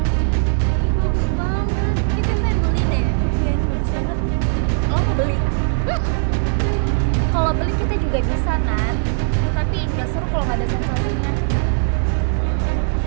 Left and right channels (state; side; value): silent; left; digital silence